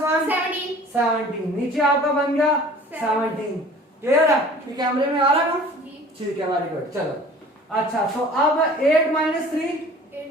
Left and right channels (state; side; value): normal; both; correlation 0.47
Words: 1 17, नीचे आपका बन गया 17। क्लियर है, ये कैमरे में आ रहा है ना? ठीक है, वेरी गुड। चलो, अच्छा, तो अब 8 - 3